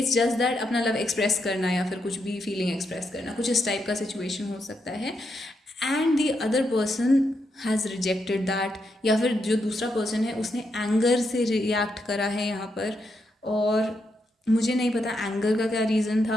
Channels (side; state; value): both; normal; correlation 0.81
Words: just that अपना लव एक्सप्रेस करना या फिर कुछ भी फीलिंग एक्सप्रेस करना, कुछ इस टाइप का सिचुएशन हो सकता है। And the other person has rejected that, या फिर जो दूसरा पर्सन है उसने एंगर से रिएक्ट करा है यहाँ पर, और मुझे नहीं पता एंगर का क्या रीज़न